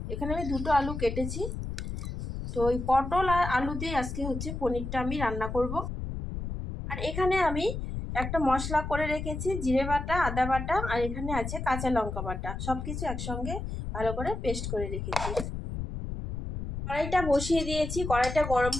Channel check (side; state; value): left; noise; rumble, 5 dB below the sound